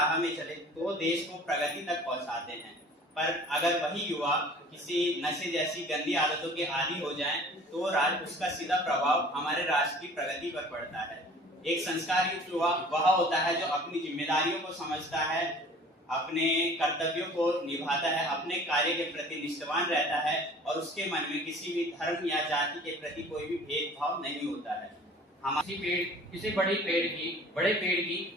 में चले, तो देश को प्रगति तक पहुंचाते हैं। पर अगर वही युवा किसी नशे जैसी गंदी आदतों के आदी हो जाए, तो उसका सीधा प्रभाव हमारे राष्ट्र की प्रगति पर पड़ता है। एक संस्कार युक्त युवा वह होता है जो अपनी जिम्मेदारियों को समझता है, अपने कर्तव्यों को निभाता है, अपने कार्य के प्रति निष्ठावान रहता है और उसके मन में किसी भी धर्म या जाति के प्रति कोई भी भेदभाव नहीं होता है। किसी बड़े पेड़ की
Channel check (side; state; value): both; normal; correlation 0.47